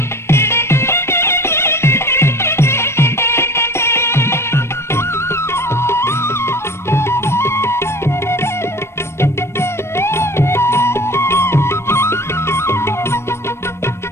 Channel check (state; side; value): late; right; 0.13 ms